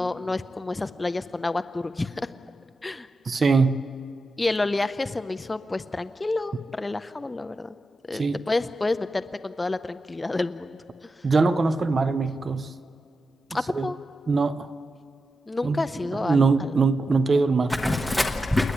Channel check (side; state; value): both; normal; correlation 0.89